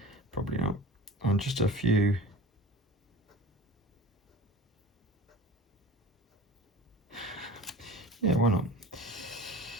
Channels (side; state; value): both; normal; correlation 0.37